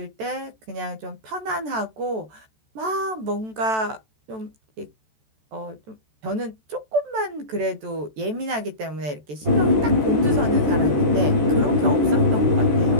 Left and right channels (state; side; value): late; left; 14 ms